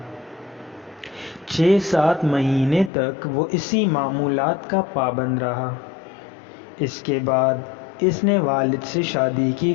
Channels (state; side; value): drops out; right; at 2.9 s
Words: 6-7 مہینے تک وہ اسی معمولات کا پابند رہا۔ اس کے بعد اس نے والد سے شادی کی